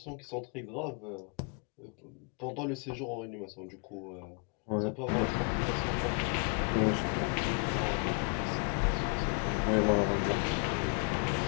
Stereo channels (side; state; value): right; quieter; 37.8 dB